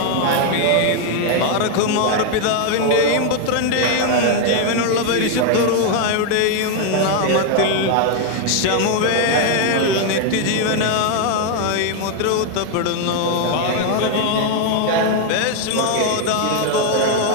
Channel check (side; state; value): both; different; correlation 0.01